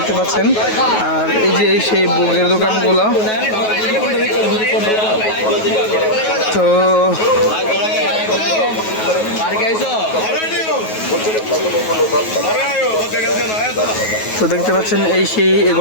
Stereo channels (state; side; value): late; right; 9.3 ms